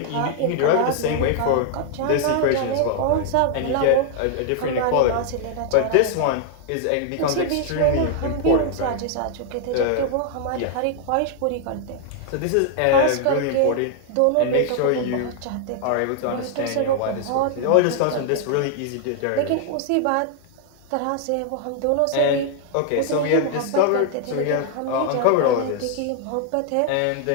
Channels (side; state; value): both; different; correlation 0.00